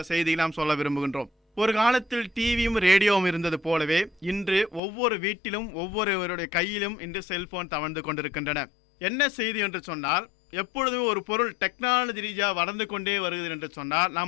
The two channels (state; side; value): drops out; right; at 4.8 s